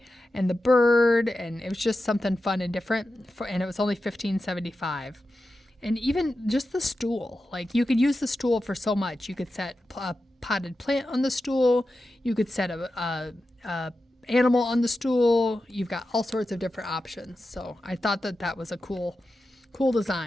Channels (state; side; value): normal; both; correlation 0.91